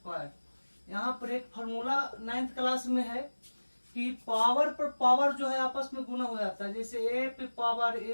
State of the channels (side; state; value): both; inverted; correlation -1.00